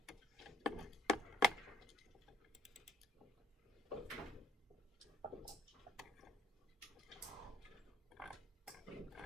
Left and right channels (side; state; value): both; normal; correlation 0.66